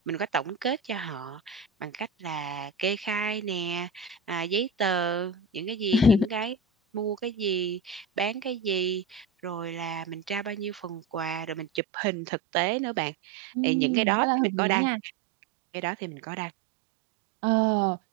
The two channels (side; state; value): left; drops out; at 11.8 s